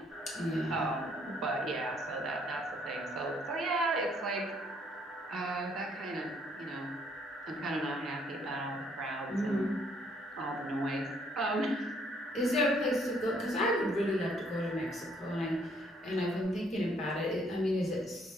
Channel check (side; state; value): both; normal; correlation 0.66